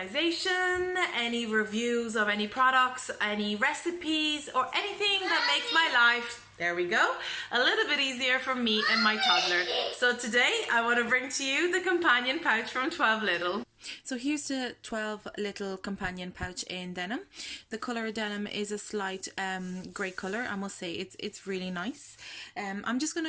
any reviews of any products, any recipes or anything that makes my life, there we go, a little bit easier for me and my toddler. So today I want to bring to you the companion pouch from 12 Little. So here's the 12 Little companion pouch in denim. The color of denim is a slight grey color. I must say it's really nice. I'm just going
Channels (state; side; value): identical; both; correlation 1.00